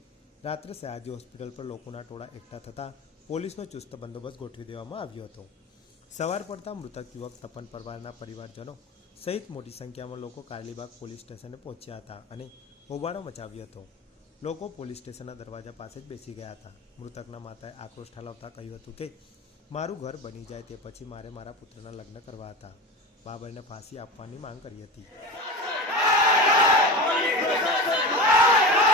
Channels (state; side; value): normal; both; correlation 0.28